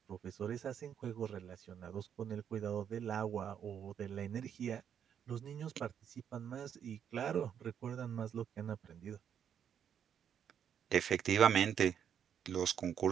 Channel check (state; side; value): quieter; left; 8.5 dB